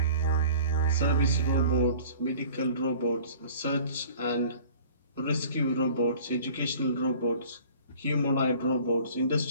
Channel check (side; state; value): both; inverted; correlation -0.48